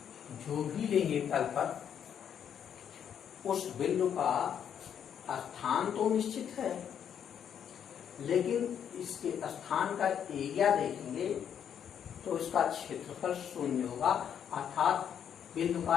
जो भी लेंगे तल पर, उस बिंदु का स्थान तो निश्चित है, लेकिन इसके स्थान का एरिया देखेंगे तो इसका क्षेत्रफल शून्य होगा, अर्थात बिंदु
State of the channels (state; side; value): quieter; right; 8.6 dB